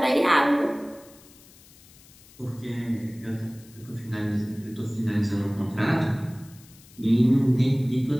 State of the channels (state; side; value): noise; left; hiss, 24 dB below the sound